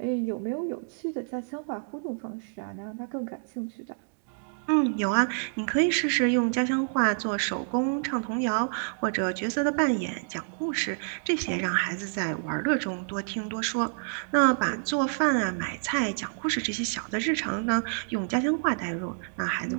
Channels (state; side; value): silent; left; digital silence